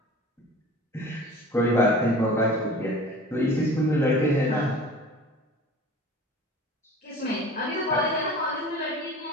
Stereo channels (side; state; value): both; normal; correlation 0.41